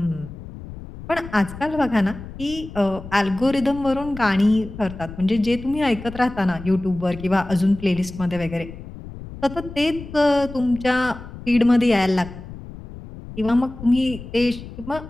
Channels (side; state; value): left; noise; rumble, 13 dB below the sound